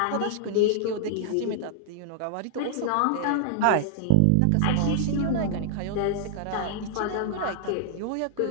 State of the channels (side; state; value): both; different; correlation -0.01